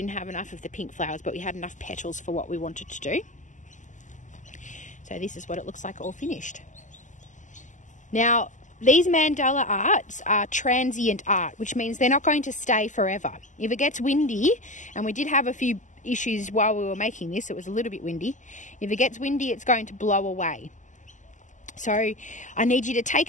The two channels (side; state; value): right; late; 0.36 ms